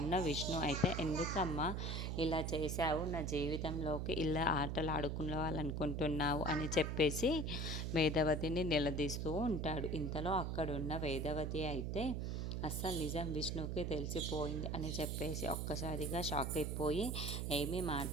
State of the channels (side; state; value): right; noise; hum, 2 dB below the sound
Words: విష్ణు అయితే, ఎందుకమ్మా ఇలా చేశావు, నా జీవితంలోకి ఇలా ఆటలు ఆడుకోవాలనుకుంటున్నావు అని చెప్పేసి వేదవతిని నిలదీస్తూ ఉంటాడు. ఇంతలో అక్కడున్న వేదవతి అయితే అస్సలు నిజం విష్ణుకి తెలిసిపోయింది అని చెప్పేసి ఒక్కసారిగా షాక్ అయిపోయి ఏమీ